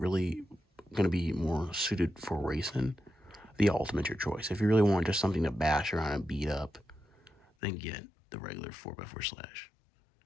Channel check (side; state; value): right; drops out; at 7.5 s